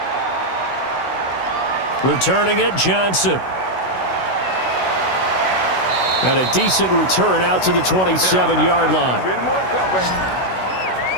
Returning it, Johnson. And a decent return out to the 27-yard line.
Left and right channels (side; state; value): right; late; 16 ms